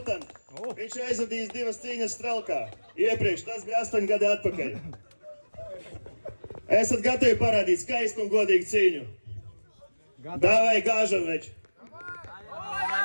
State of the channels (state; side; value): inverted; both; correlation -1.00